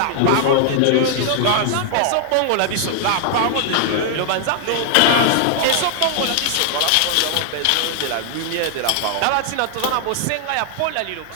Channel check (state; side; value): different; both; correlation 0.00